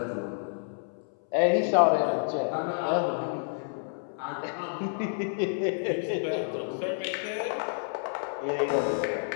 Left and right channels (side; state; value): right; silent; 58 dB below the other